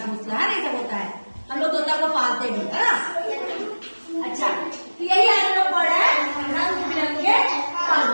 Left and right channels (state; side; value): inverted; both; correlation -1.00